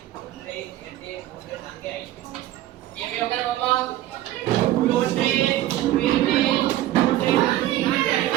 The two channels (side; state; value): left; quieter; 14.3 dB